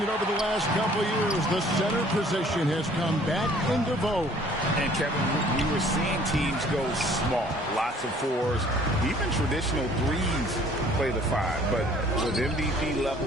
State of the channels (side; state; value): both; normal; correlation 0.56